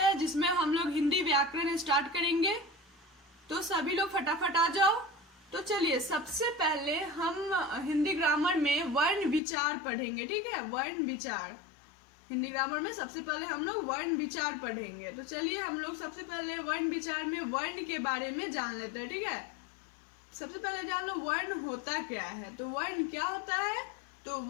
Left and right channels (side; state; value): right; drops out; at 9.4 s